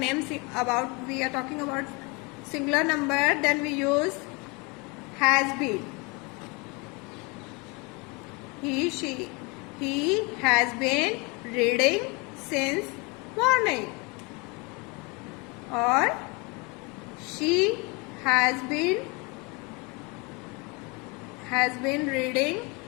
about, we are talking about singular number, then we use has been. He has been reading since morning. Or she has been reading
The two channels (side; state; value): right; quieter; 28.8 dB